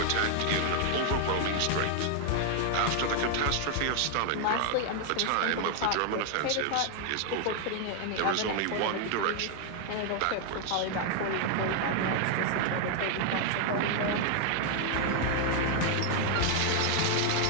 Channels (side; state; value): both; different; correlation 0.00